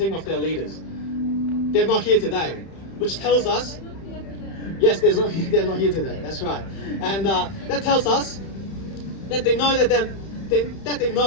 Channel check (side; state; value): right; late; 31 ms